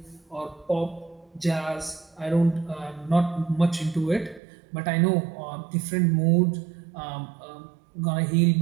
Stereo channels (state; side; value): drops out; left; at 4.4 s